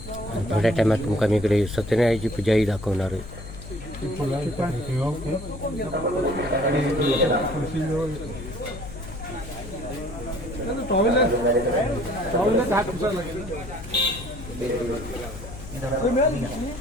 थोड्या टायमात तुमका मी इकडे सत्यनारायणाची पूजाही दाखवणार आहे.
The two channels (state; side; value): noise; left; hum, 13 dB below the sound